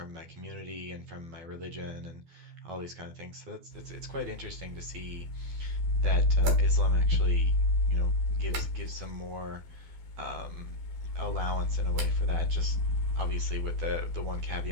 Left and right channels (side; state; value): left; late; 12 ms